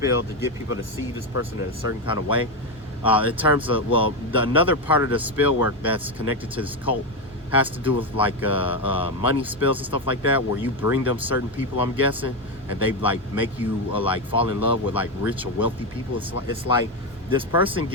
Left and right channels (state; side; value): normal; both; correlation 0.10